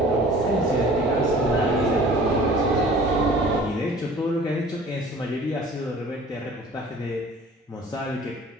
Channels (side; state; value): both; normal; correlation 0.47